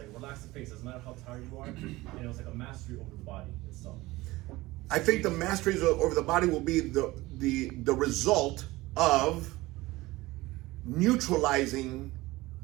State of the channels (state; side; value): quieter; left; 19.5 dB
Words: relax the face. Doesn't matter how tired you are. And it was like a mastery over the body itself. I think the masteries over the body will be the result of neutralizing